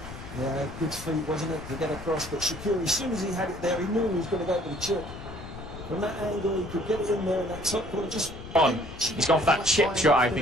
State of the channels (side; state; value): left; noise; rumble, 12 dB below the sound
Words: Yeah, good feet, wasn't it, to get across. But Shaqiri, as soon as he had it there, he knew he was going to go for the chip. From that angle, he could get it in there, and that top corner just... He's gone for that chip shot, I